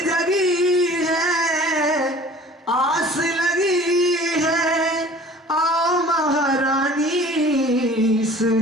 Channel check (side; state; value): both; normal; correlation 0.47